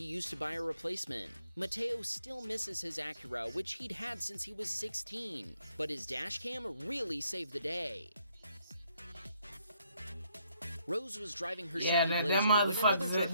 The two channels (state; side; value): inverted; both; correlation -0.70